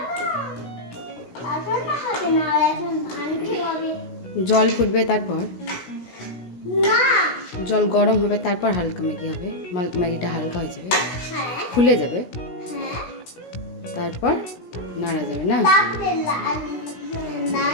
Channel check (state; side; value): late; right; 16 ms